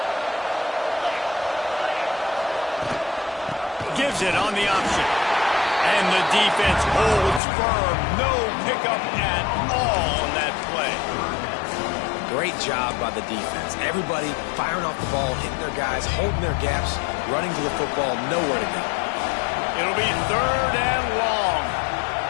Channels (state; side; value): drops out; right; at 7.4 s